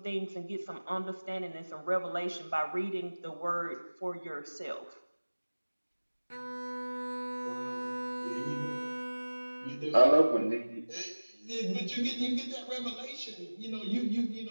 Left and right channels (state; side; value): inverted; both; correlation -1.00